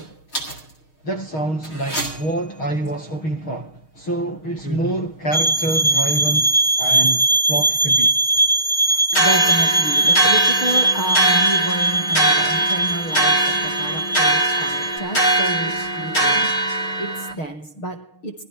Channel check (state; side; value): late; right; 6.4 ms